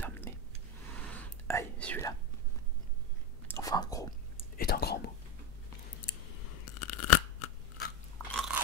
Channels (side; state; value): both; normal; correlation 0.12